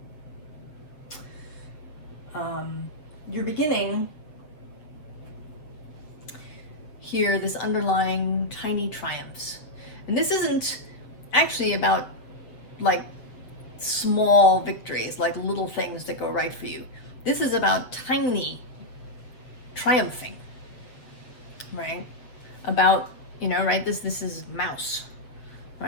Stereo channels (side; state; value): right; late; 8.0 ms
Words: You're beginning here this underlying tiny triumphs. And this isn't actually about like small victories, like little things that go right for you. This is about tiny triumphing, right? About, right? This is mouse,